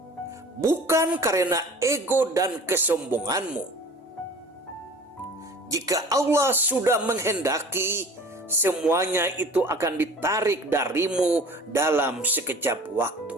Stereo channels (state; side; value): normal; both; correlation 0.44